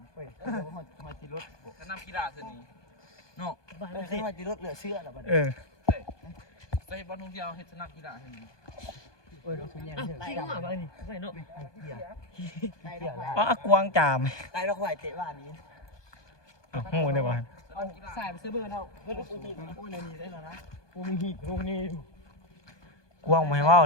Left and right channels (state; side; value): late; right; 1.2 ms